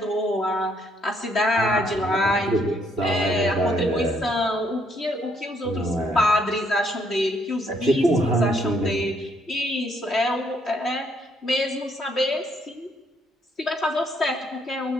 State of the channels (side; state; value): both; normal; correlation 0.70